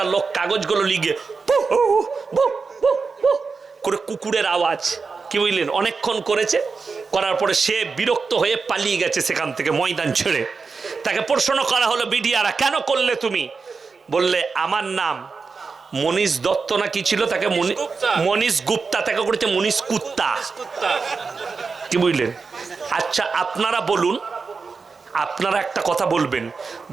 লোক কাগজগুলো লিখে করে কুকুরের আওয়াজ, কি বুঝলেন, অনেকক্ষণ করেছে, করার পরে সে বিরক্ত হয়ে পালিয়ে গেছে সেখান থেকে ময়দান ছেড়ে। তাকে প্রশ্ন করা হলো, বিডিআরা কেন করলে তুমি? বললে আমার নাম মনীষ দত্ত না কি ছিল, তাকে মনীষ গুপ্তা, তাকে করেছে মনীষ কুত্তা, কি বুঝলেন। আচ্ছা আপনারা বলুন, আপনারা একটা কথা বলবেন,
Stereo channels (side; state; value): left; quieter; 4.8 dB